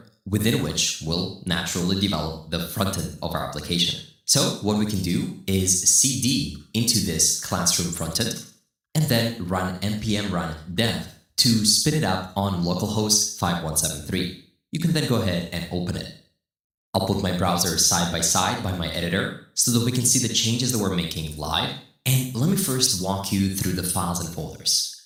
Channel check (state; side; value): identical; both; correlation 1.00